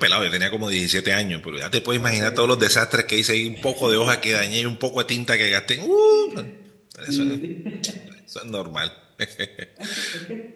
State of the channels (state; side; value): identical; both; correlation 1.00